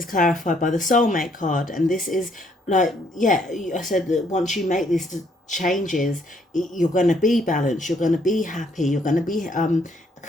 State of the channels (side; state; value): both; normal; correlation 0.68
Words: clarified by the soulmate card. And this is like, yeah, I said that once you make these changes, you're going to be balanced, you're going to be happy, you're going to be